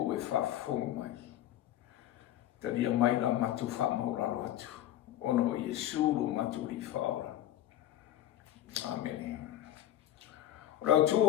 o e whafonga mai. Taria mai la matu whamauralo atu. Ono o Yesu lo matu li whaora. Amen. Rau tu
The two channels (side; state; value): right; quieter; 12.6 dB